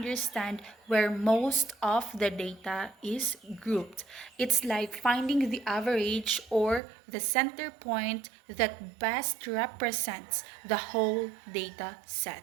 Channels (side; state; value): left; drops out; at 6.8 s